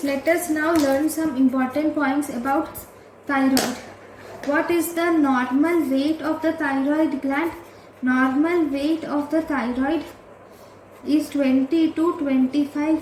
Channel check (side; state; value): both; identical; correlation 1.00